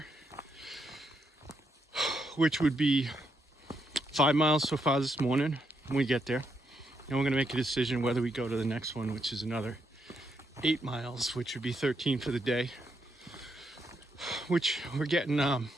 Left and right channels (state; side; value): normal; both; correlation 0.78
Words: which would be 5 miles so far this morning when we get there. And we're gonna make a decision whether we go to the next one, which is another 8 miles, which would be 13 for the day. Which we're getting